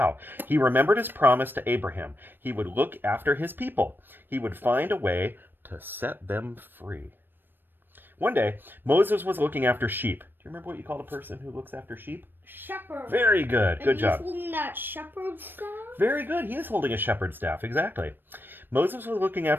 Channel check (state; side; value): late; left; 0.095 ms